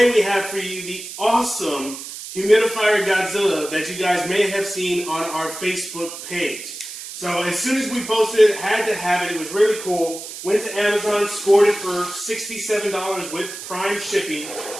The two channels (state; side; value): noise; right; hiss, 11 dB below the sound